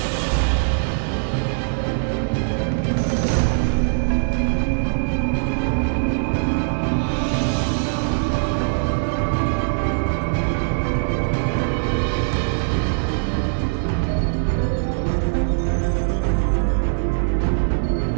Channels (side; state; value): left; silent; digital silence